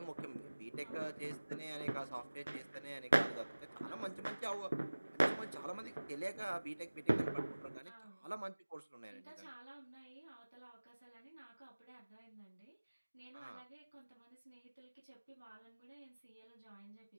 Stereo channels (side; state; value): both; inverted; correlation -1.00